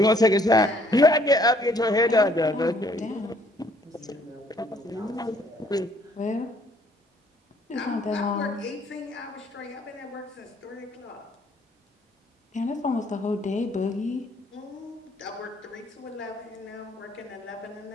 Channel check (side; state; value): both; normal; correlation 0.62